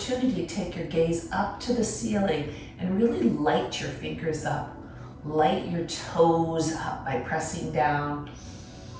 to take your gaze up to the ceiling and really light your fingers up. Light your toes up by pressing down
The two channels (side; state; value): both; identical; correlation 1.00